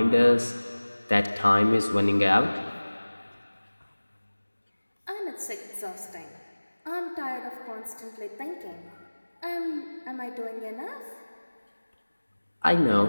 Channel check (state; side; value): inverted; both; correlation -1.00